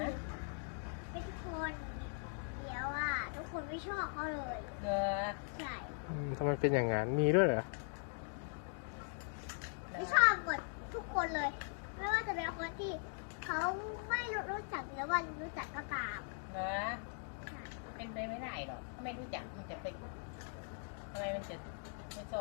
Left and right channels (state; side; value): silent; right; 51 dB below the other